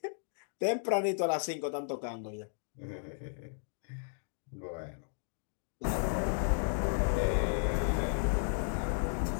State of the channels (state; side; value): silent; right; digital silence